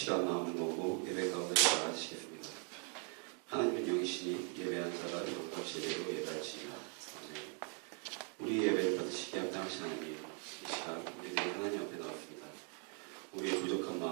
마음을 모으고 예배 가운데 나아가시겠습니다. 하나님은 영이시니 예배한 자가 이것과 제대로 예배하시리라. 우리 예배를 받으시기에 합당하신 하나님, 이 시간 우리들이 하나님 앞에 나왔습니다. 우리의 부족한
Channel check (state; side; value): quieter; left; 39.8 dB